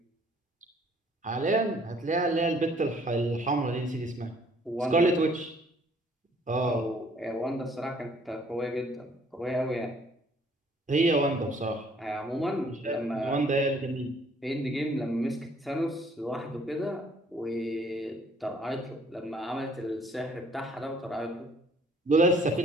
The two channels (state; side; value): normal; both; correlation 0.60